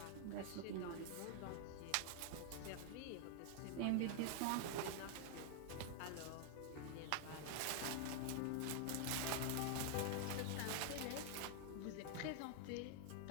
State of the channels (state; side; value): different; both; correlation 0.00